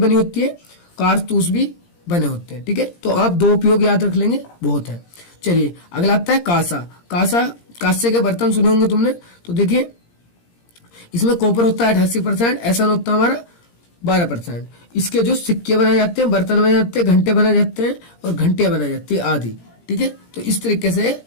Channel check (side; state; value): right; late; 17 ms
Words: होती है, कारतूस भी बने होते हैं। ठीक है, तो आप दो उपयोग याद रख लेंगे, बहुत है। चलिए अगला आता है कांसा। कांसे के बर्तन सुने होंगे तुमने। तो देखिए इसमें कॉपर होता है 88%, ऐसा होता है हमारा 12%। इसके जो सिक्के बनाए जाते हैं, बर्तन बनाए जाते हैं, घंटे बनाए जाते हैं और घंटियां बनाई जाती है आदि। ठीक है, तो इस तरीके से